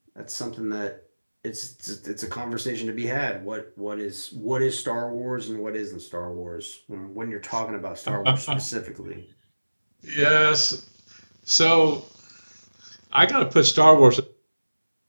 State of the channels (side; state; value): both; inverted; correlation -1.00